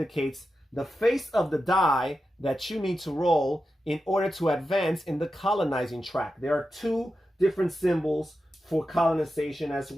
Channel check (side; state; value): both; normal; correlation 0.90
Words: the face of the die that you need to roll in order to advance in the colonizing track. There are two different symbols for colonization as